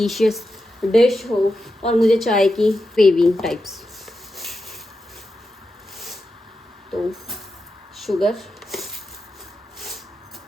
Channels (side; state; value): both; normal; correlation 0.89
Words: डिश हो, और मुझे चाय की क्रेविंग टाइप्स। तो शुगर,